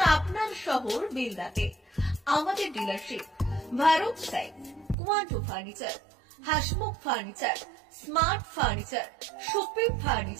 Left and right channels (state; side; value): drops out; left; at 5.0 s